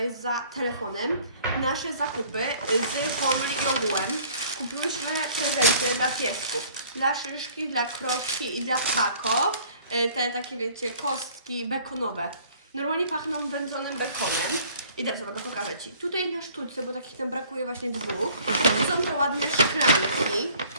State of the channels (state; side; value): inverted; both; correlation -0.55